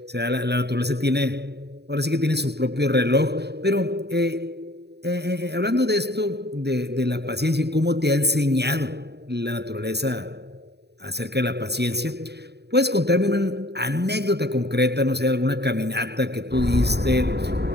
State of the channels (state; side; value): late; left; 0.48 ms